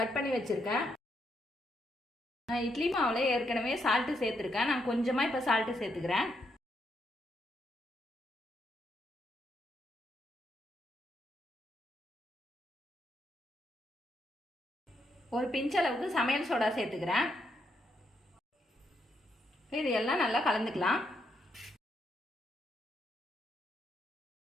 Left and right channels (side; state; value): both; normal; correlation 0.78